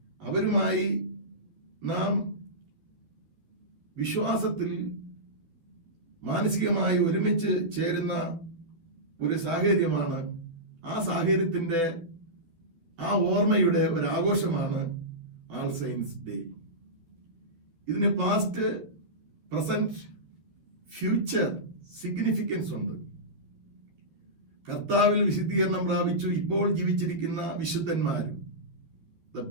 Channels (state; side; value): late; left; 12 ms